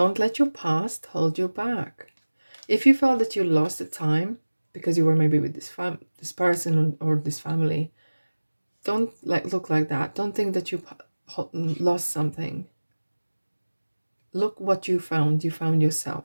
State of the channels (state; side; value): inverted; both; correlation -1.00